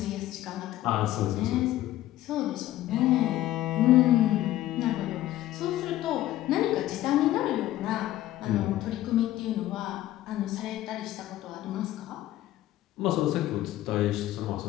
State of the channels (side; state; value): right; quieter; 14.5 dB